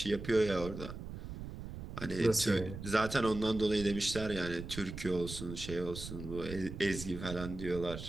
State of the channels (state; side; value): noise; right; rumble, 9 dB below the sound